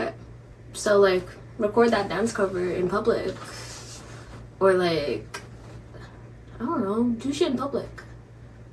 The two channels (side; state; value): both; identical; correlation 1.00